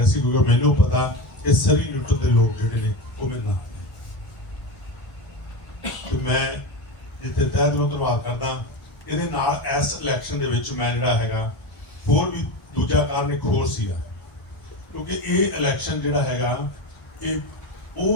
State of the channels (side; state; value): right; late; 1.9 ms